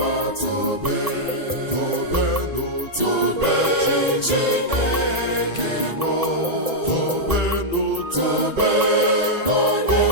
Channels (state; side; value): late; left; 1.8 ms